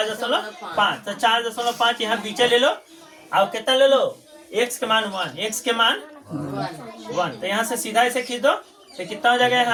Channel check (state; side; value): identical; both; correlation 1.00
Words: तो 4.5 यहाँ पीछे ले लो। अब कितना ले लो x के मान 1 तो यहाँ से सीधा इसे खींच दो तो कितना हो जाएगा